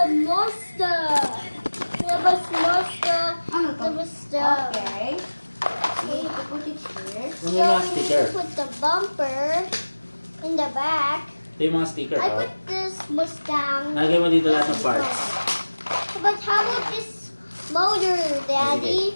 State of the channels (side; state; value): both; inverted; correlation -1.00